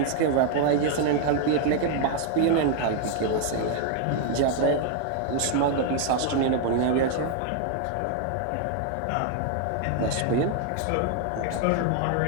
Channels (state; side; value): different; both; correlation 0.00